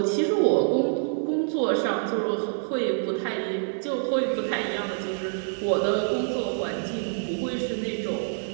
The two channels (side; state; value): left; silent; 61 dB below the other